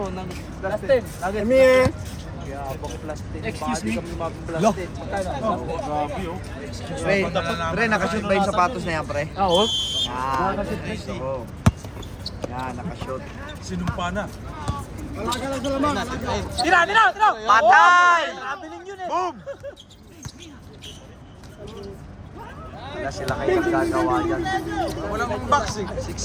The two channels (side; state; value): both; identical; correlation 1.00